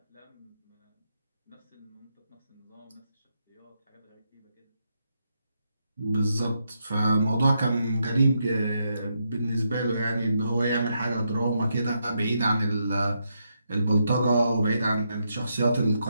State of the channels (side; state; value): both; inverted; correlation -0.81